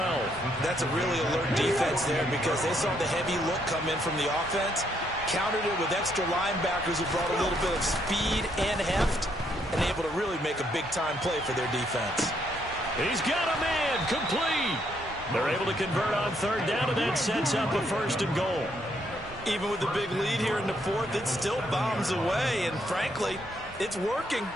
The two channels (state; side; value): normal; both; correlation 0.73